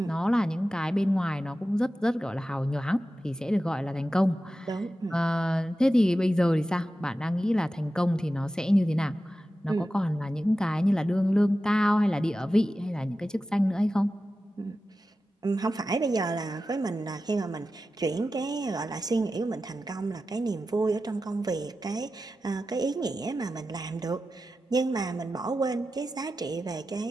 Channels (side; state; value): both; normal; correlation 0.93